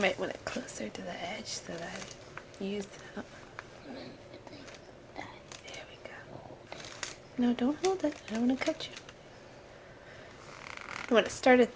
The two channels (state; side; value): identical; both; correlation 1.00